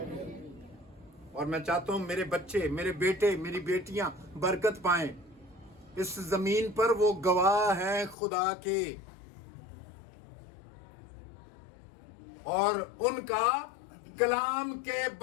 और मैं चाहता हूं मेरे बच्चे, मेरे बेटे, मेरी बेटियां बरकत पाएं। इस जमीन पर वो गवाह हैं खुदा के, और उनका कलाम के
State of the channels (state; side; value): drops out; right; at 8.2 s